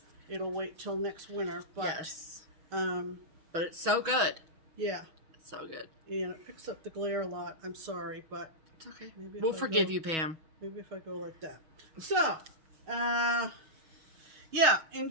It'll wait till next winter. But, yes. But it's so good. Yeah. It's so good. Yeah, it picks up the glare a lot. I'm sorry, but it's okay. We'll forgive you, Pam. Maybe if I go like that. So, yeah,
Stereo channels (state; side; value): late; left; 6.2 ms